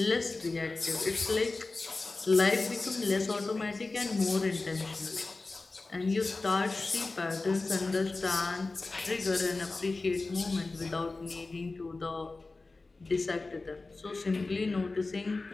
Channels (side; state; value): right; quieter; 3.5 dB